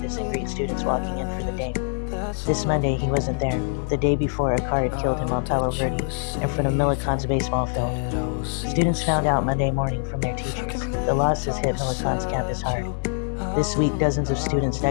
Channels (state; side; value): silent; right; 62 dB below the other